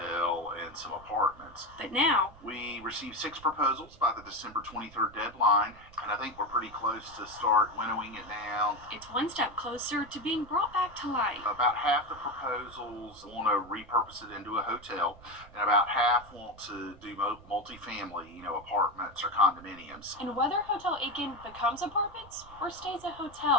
and some apartments. but now We received 6 proposals by the December 23rd deadline, and I think we're pretty close to start winnowing it down. it's one step closer to being brought back to life. About half the proposals want to repurpose it into a hotel, and about half want to do multifamily, apartments or condominiums. And whether Hotel Aiken becomes apartments or stays a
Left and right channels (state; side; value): noise; right; rumble, 22 dB below the sound